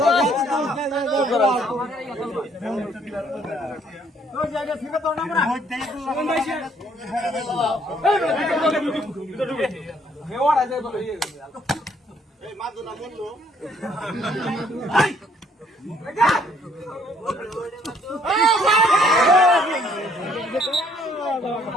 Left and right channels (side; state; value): both; normal; correlation 0.65